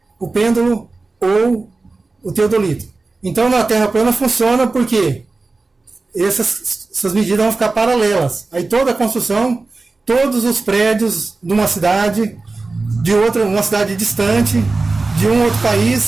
o pêndulo ou o teodolito. Então, na Terra plana funciona porque essas medidas vão ficar paralelas. Aí toda a construção, todos os prédios de uma cidade, uma cidade distante, de um outro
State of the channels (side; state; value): left; quieter; 3.6 dB